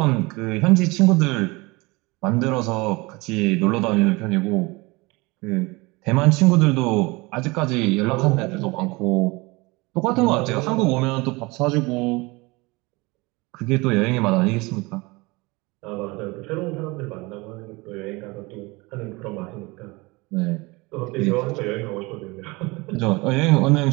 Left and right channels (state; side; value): quieter; left; 24.3 dB